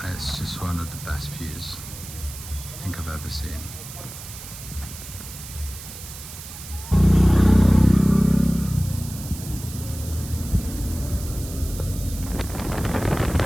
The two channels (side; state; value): right; noise; hiss, 13 dB below the sound